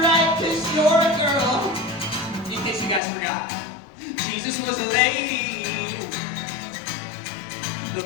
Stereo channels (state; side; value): drops out; right; at 3.0 s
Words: right, 'cause you're a girl. In case you guys forgot, Jesus was a lady, the